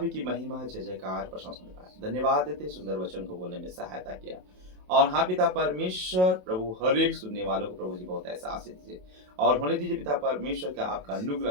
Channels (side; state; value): left; late; 27 ms